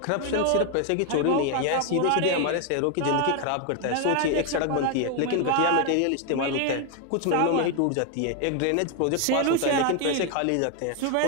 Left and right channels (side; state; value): both; different; correlation 0.00